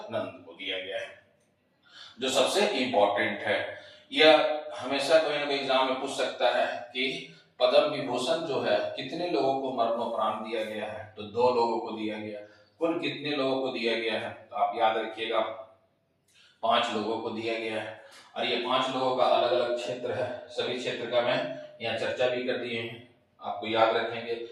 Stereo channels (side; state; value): both; identical; correlation 1.00